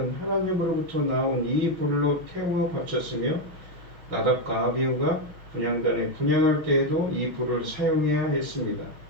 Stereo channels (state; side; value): late; left; 5.9 ms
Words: 하나님으로부터 나온 이 불로 태워 바쳤으며 나답과 아비후가 분향단에 분향할 때에도 이 불을 사용해야 했습니다.